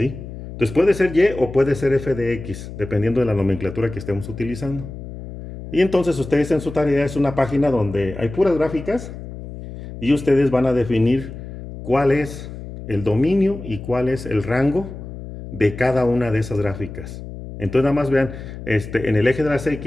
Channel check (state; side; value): noise; left; hum, 11 dB below the sound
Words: Entonces puede ser y o puede ser f de x, dependiendo de la nomenclatura que estemos utilizando. Y entonces ustedes en su tarea es una página donde hay puras gráficas y ustedes van a definir cuál es el dominio y cuál es el rango de cada una de esas gráficas. Entonces nada más vean en el eje de las